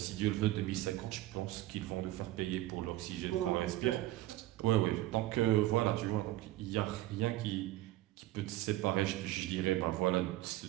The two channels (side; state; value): left; quieter; 16.1 dB